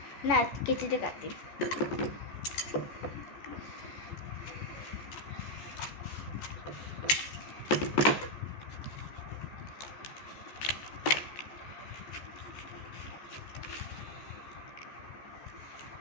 না কেচিতে কাটি।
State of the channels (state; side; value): late; right; 14 ms